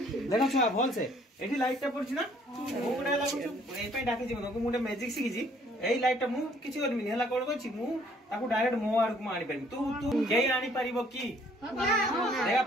छुआ भल से एठी लाइट टा पड़छ ना मु गुडा लागु ए पे डाके जे मनको मुडे मैजिक सिखि जी एई लाइट टा मु किछि करमिनी हला कोन कोछि मु ताकू डायरेक्ट मो आड़ को आनी पारिम तू केई आनी पारिबो की देखा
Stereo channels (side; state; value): both; normal; correlation 0.61